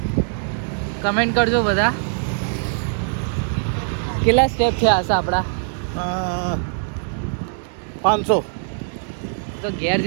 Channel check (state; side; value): silent; left; 64 dB below the other